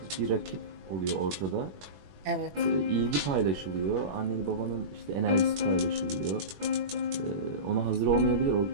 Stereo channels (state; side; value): late; left; 21 ms